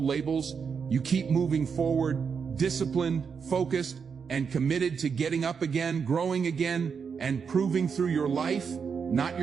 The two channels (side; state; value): left; quieter; 6.2 dB